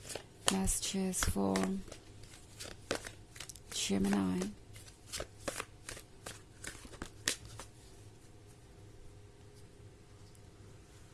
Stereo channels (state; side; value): identical; both; correlation 1.00